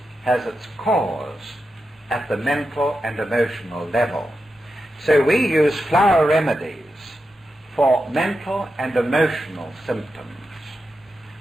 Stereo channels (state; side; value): normal; both; correlation 0.89